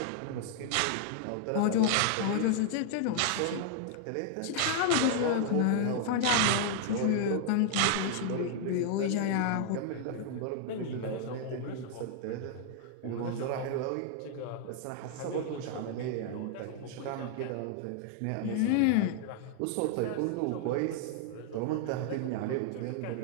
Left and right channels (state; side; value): different; both; correlation 0.00